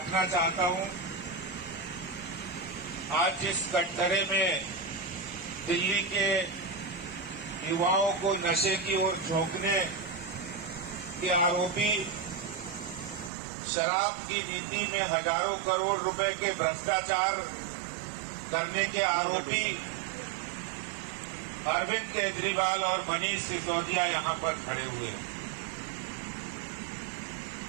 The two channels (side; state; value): left; drops out; at 13.3 s